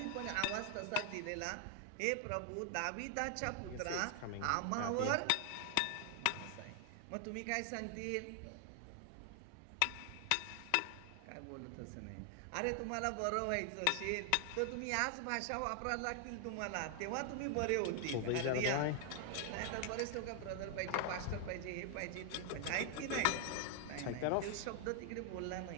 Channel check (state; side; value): different; both; correlation 0.00